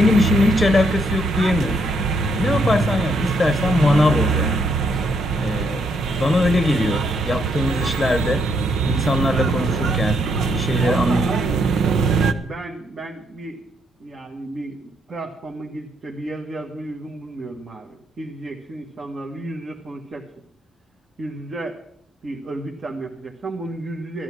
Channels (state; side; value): normal; both; correlation 0.74